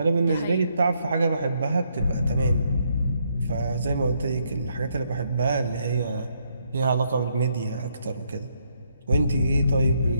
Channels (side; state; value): both; inverted; correlation -0.75